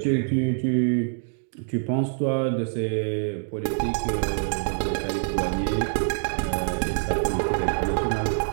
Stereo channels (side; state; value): left; silent; digital silence